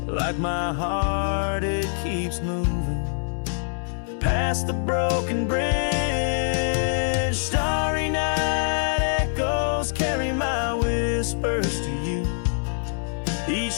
Like my heart, it keeps moving past the broken bridge. Starry night echoes carry my whispers to you.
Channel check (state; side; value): silent; right; 62 dB below the other